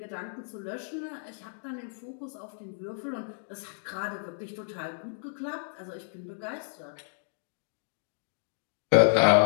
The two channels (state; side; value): silent; right; digital silence